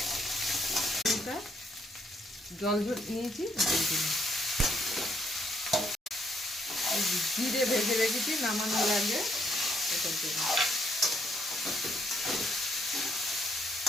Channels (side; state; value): both; normal; correlation 0.72